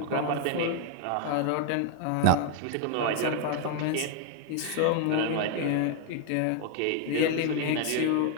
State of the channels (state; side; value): different; both; correlation 0.00